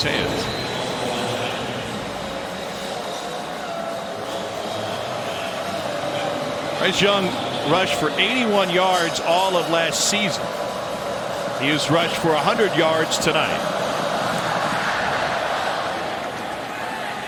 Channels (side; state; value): both; identical; correlation 1.00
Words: hands. Bryce Young rushed for 81 yards all of last season. He has rushed for 100 yards tonight.